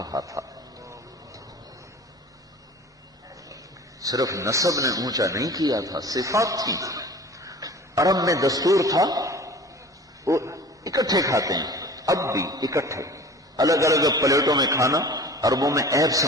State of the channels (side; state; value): both; normal; correlation 0.41